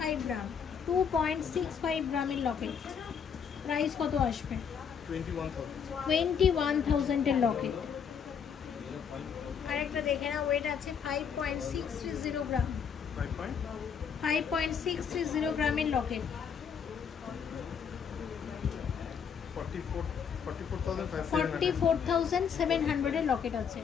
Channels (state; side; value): quieter; right; 7.1 dB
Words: গ্রাম, 2.65 গ্রামের লকেট, প্রাইস কত আসবে? 21,000 এর লকেট। আরেকটা দেখে না, ওয়েট আছে 5.630 গ্রাম, 5.630 গ্রামের লকেট, 44,700 এর লকেট আছে